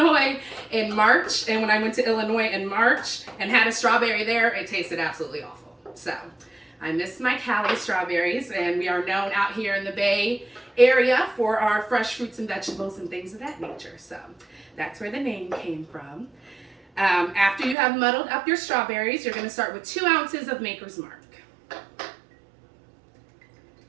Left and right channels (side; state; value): left; drops out; at 17.8 s